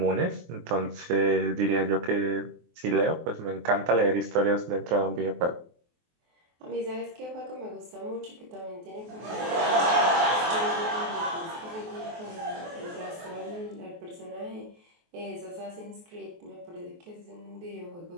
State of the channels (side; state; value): left; late; 23 ms